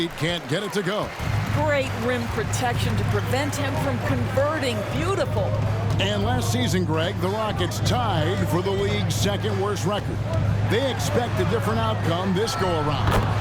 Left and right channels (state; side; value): identical; both; correlation 1.00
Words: can't get it to go. Great rim protection to prevent him from converting. Beautiful. And last season, Greg, the Rockets tied for the league's second worst record. They expect a different outcome this go-around.